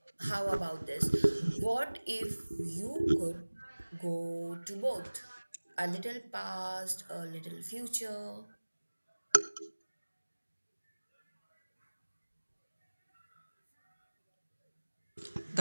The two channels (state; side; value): inverted; both; correlation -1.00